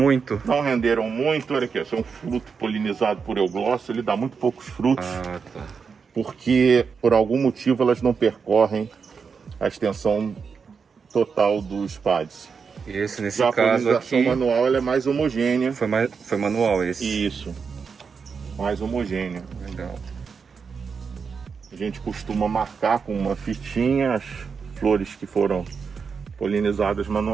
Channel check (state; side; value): quieter; left; 5.7 dB